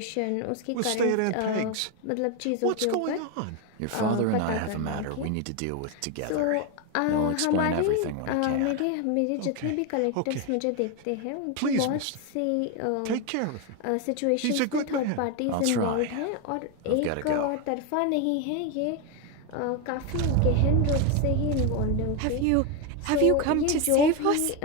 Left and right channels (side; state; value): both; different; correlation 0.02